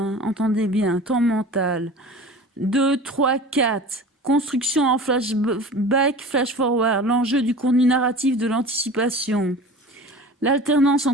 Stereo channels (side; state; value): both; normal; correlation 0.38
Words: entendez bien, temps mental. 2, 3, 4. Construction en flashback, flash-forward, l'enjeu du contenu narratif de l'anticipation. L'alternance